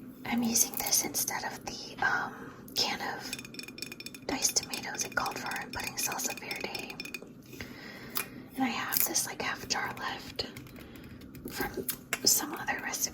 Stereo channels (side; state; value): both; identical; correlation 1.00